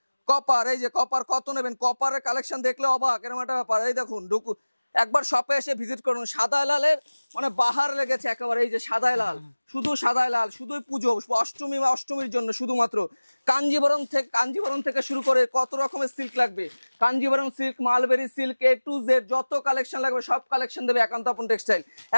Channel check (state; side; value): inverted; both; correlation -1.00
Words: কপার কত নেবেন, কপারের কালেকশন দেখলে অবাক, এরকম একটা ব্যাপার। এই দেখুন একবার শপে এসে ভিজিট করুন। সাদা লালের মানে বাহার লেগেছে একেবারে। এই যে সাদা লাল, শুধুই পুজো অষ্টমীর জন্য শুধুমাত্র। কাঞ্জিবরম থেকে শুরু করে কত রকমের সিল্ক লাগবে, Kanjeevaram silk, mulberry silk, A to Z যত কালেকশন লাগবে সব কালেকশন দেবে একান্ত আপন টেক্সটাইল।